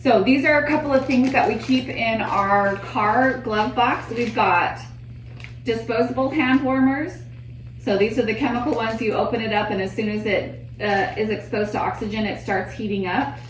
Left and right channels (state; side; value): identical; both; correlation 1.00